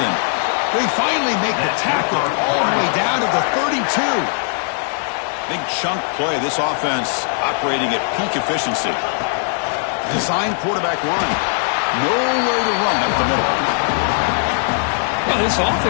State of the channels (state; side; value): silent; right; digital silence